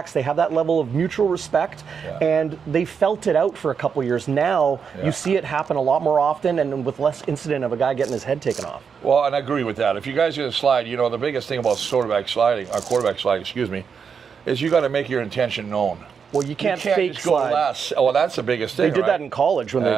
they have that level of mutual respect, and they felt it out for a couple years. Now you see it happen a lot more often and with less incident of a guy getting his head taken off. Well, and I agree with that. If you guys are going to slide, the biggest thing about quarterback sliding, is you got to make your intention known. Well, you can't fake just slide. Go less. Well, that's the biggest thing. They did that in college when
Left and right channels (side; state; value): left; quieter; 6.4 dB